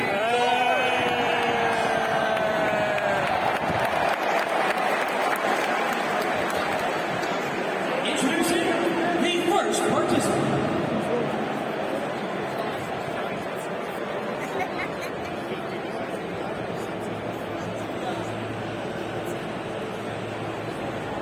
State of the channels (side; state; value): both; identical; correlation 1.00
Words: Introducing the first participant.